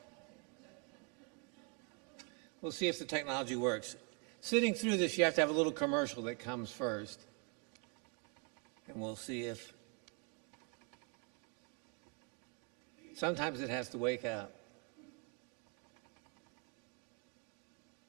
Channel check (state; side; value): quieter; left; 36.4 dB